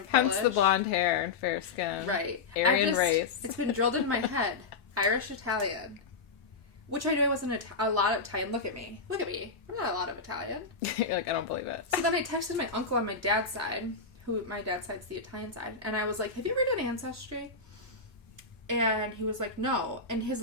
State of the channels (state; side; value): quieter; right; 4.3 dB